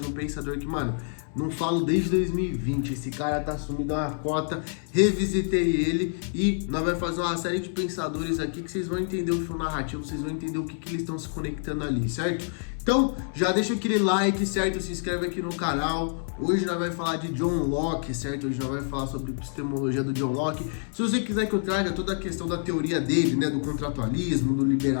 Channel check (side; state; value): right; silent; 60 dB below the other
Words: um pensador que, mano, não falo desde 2020, esse cara tá sumido a uma cota, revisitei ele e nós vamos fazer uma série de pensadores aqui que vocês vão entender o fio narrativo, vocês vão entender o que eles estão se conectando ali, certo? Então, já deixa aquele like, certo? Se inscreve aqui no canal. Hoje nós vamos falar de John Locke, certo? Hoje nós vamos falar sobre epistemologia do John Locke. Se você quiser que eu traga toda a questão da teoria dele, né? Do contratualismo, do